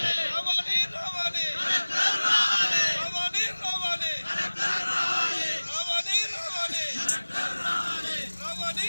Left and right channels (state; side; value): inverted; both; correlation -1.00